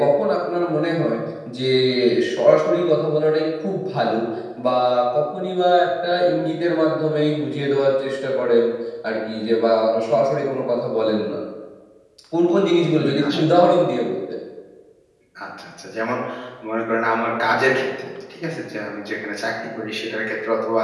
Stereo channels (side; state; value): both; identical; correlation 1.00